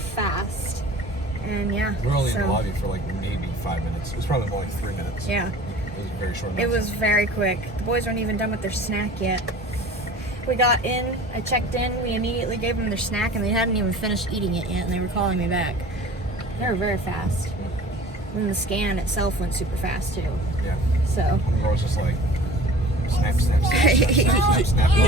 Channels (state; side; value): normal; both; correlation 0.43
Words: fast. And yeah. We're only in so, the lobby for like maybe 5 minutes. It was probably more like 3 minutes. Yeah. It was very short. It was very quick. The boys weren't even done with their snack yet. We got in, I checked in, we immediately gave them their snack, and they hadn't even finished eating it yet, and they were calling me back. They were very fast. And the scan itself went super fast too. Yeah. So. One girl was just like, snap, snap, snap, snap, snap, snap, snap.